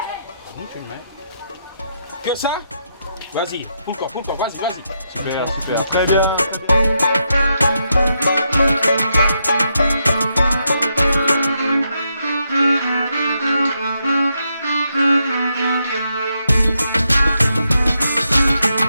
Tu le mets. Que ça? Vas-y, pull corps, vas-y. Super, très bien.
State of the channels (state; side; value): inverted; both; correlation -0.81